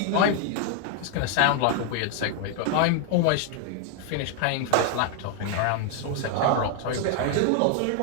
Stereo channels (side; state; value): both; different; correlation 0.00